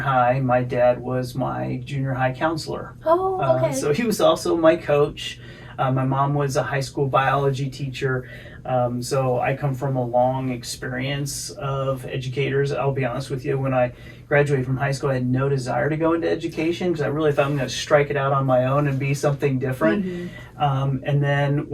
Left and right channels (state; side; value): identical; both; correlation 1.00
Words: my dad was my junior high counselor. Oh, okay. So he was also my coach. My mom was a high school biology teacher. So I come from a long experience of educators. I'll be honest with you, when I graduated from high school, I had no desire to go into education because I really thought I'm going to strike it out on my own and be something different. And then